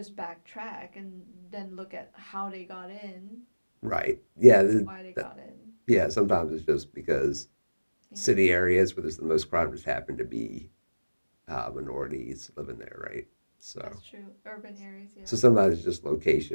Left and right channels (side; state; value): both; inverted; correlation -1.00